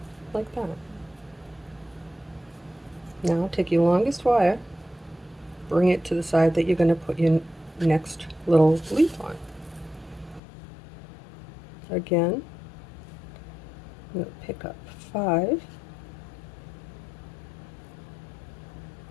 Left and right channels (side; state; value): right; drops out; at 10.4 s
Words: Like that. Now take your longest wire, bring it to the side that you're going to put your next little leaf on. Again, I'm going to pick up 5.